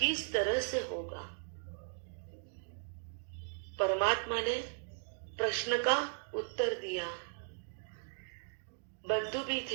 तरह से होगा? परमात्मा ने प्रश्न का उत्तर दिया। बंधु भी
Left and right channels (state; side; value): silent; left; digital silence